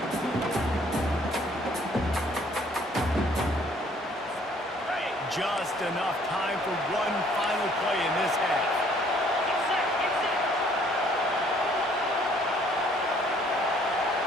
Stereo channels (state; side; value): normal; both; correlation 0.61